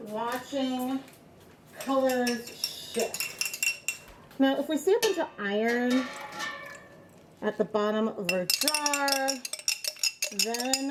watching colors shift. Now, if we see a bunch of iron at the bottom of our jar,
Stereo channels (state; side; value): identical; both; correlation 1.00